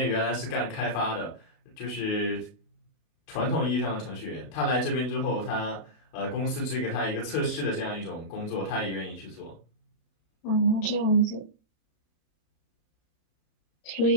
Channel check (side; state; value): right; late; 32 ms